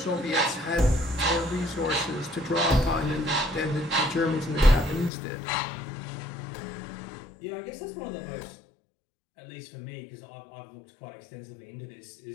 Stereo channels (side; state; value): right; drops out; at 5.1 s